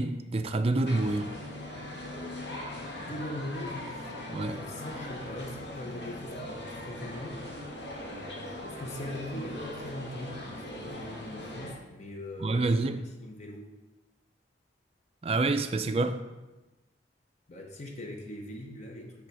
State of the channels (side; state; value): both; normal; correlation 0.65